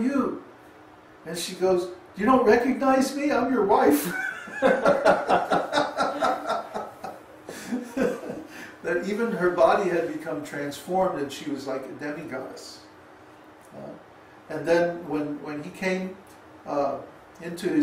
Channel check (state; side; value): identical; both; correlation 1.00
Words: And she goes, you don't recognize me? I'm your wife. That even her body had become transformed and she was like a demigoddess. And then when he came into